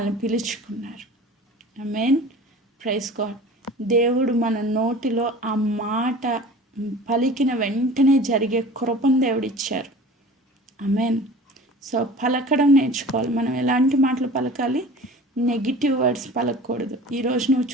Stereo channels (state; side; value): normal; both; correlation 0.41